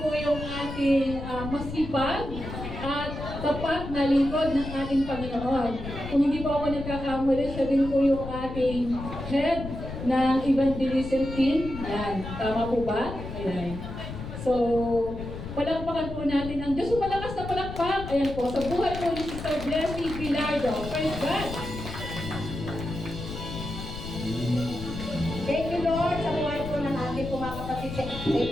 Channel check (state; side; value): noise; left; rumble, 9 dB below the sound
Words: po yung ating masipag at tapat na lingkod ng ating Panginoon. Kung hindi po ako nagkakamali, siya din po yung ating head ng evangelism team. Yan. Tama po ba? Ayan. So, palakpakan po natin ang Diyos. Malakas na palakpak. Ayan po. Sa buhay po ni Sister Blessing Bilardo. Praise God! Thank you, Lord, sa buhay po ng ating mga kapatid. Thank